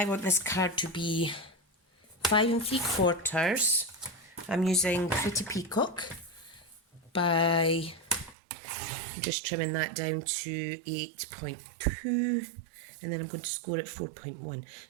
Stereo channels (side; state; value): left; drops out; at 8.3 s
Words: want this card to be 5 3/4. I'm using Pretty Peacock by just trimming that down to 8.2, and then I'm going to score it 4.1.